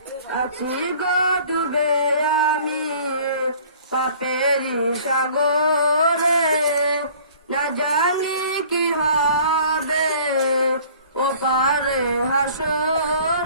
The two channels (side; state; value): both; inverted; correlation -0.51